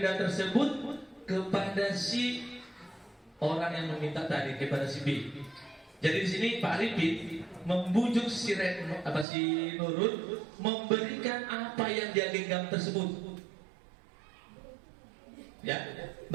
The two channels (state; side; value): drops out; left; at 9.2 s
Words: tersebut kepada si orang yang meminta tadi, kepada si B. Jadi di sini Pak Arifin membujuk si Nurul memberikan apa yang dia genggam tersebut. Ya,